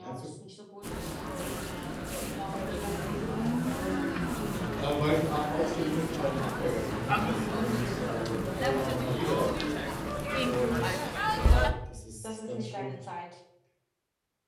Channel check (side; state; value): both; identical; correlation 1.00